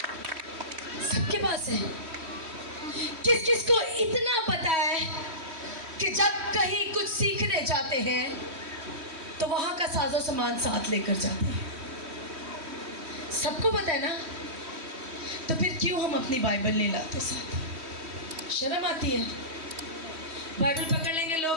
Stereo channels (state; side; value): late; left; 3.1 ms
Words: सबके पास है। किस किस को इतना पता है कि जब कहीं कुछ सीखने जाते हैं तो वहां का साजो सामान साथ लेकर जाते हैं? सबको पता है ना, तो फिर क्यों हम अपनी बाइबल नहीं लाते साथ? शर्म आती है। बाइबल पकड़ लेंगे,